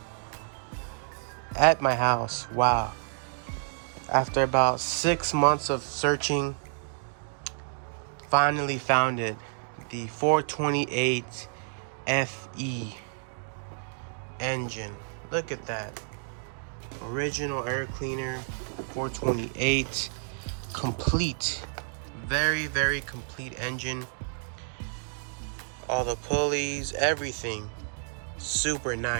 at my house. Wow. After about 6 months of searching, finally found it. The 428 FE engine. Look at that. Original air cleaner, 428. Complete. Very, very complete engine. All the pulleys, everything. Super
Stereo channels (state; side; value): silent; left; digital silence